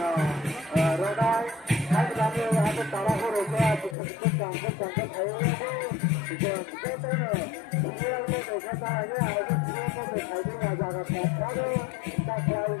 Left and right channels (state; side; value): drops out; right; at 4.0 s